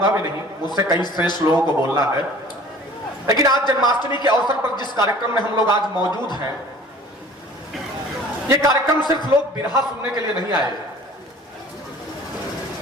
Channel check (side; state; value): both; normal; correlation 0.47